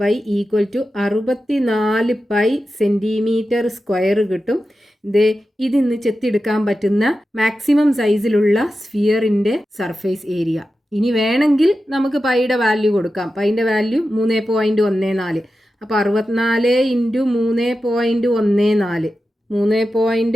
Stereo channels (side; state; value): both; normal; correlation 0.92